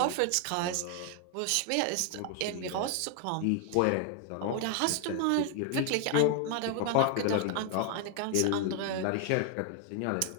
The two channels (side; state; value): both; different; correlation 0.00